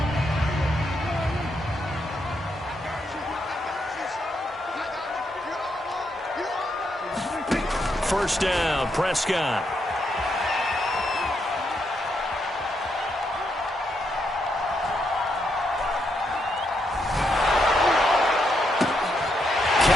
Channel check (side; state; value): both; normal; correlation 0.79